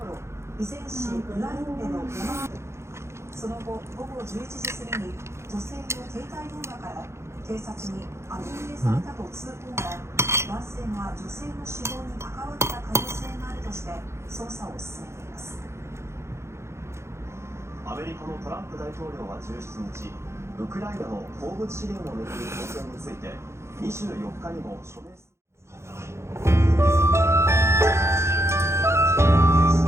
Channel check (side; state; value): left; late; 0.13 ms